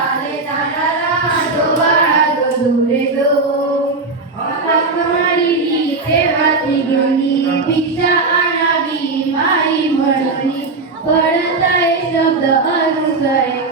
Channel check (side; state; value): left; quieter; 3.7 dB